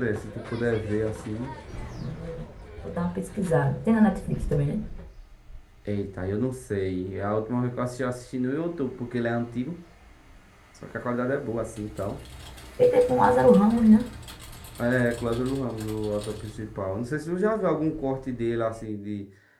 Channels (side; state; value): both; identical; correlation 1.00